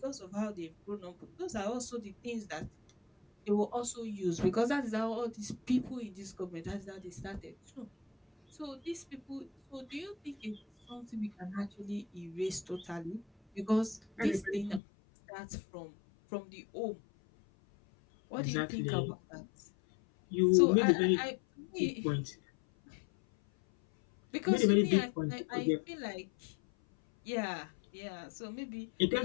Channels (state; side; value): drops out; right; at 14.8 s